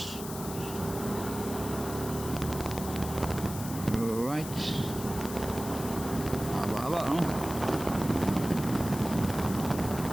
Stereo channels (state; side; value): noise; left; hiss, 11 dB below the sound